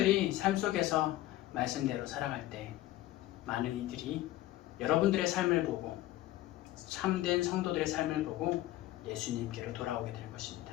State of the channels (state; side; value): quieter; right; 15.4 dB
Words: 삶 속에서 말씀대로 살아갈 때 많은 이들이 여러분들의 삶을 보고, 참된 성도들의 삶을 보고 예수님께로 돌아오게 될